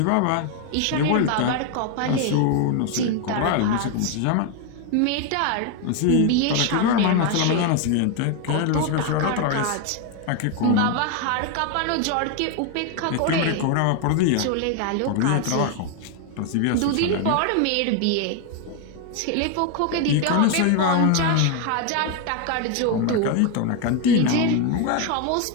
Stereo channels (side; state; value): both; different; correlation 0.01